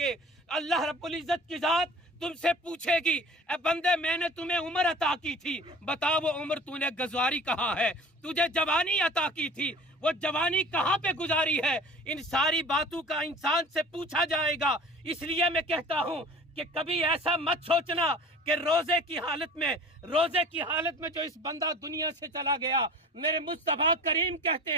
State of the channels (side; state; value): both; normal; correlation 0.42